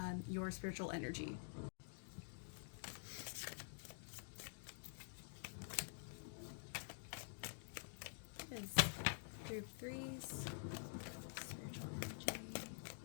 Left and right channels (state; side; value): silent; right; digital silence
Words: your spiritual energy. Is group threes, spiritual energy.